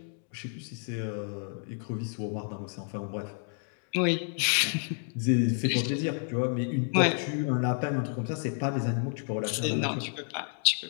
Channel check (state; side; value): silent; right; 58 dB below the other